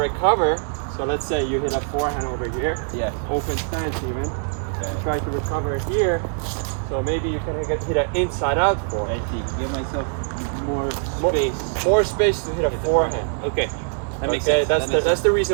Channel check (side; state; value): left; silent; digital silence